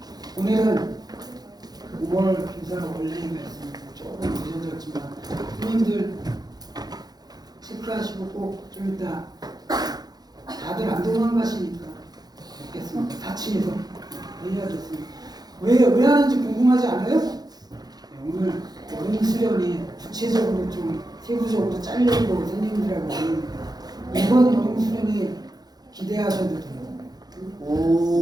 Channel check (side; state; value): left; late; 0.19 ms